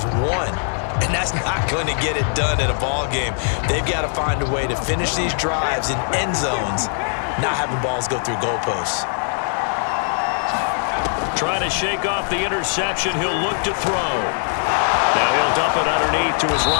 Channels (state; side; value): silent; right; 60 dB below the other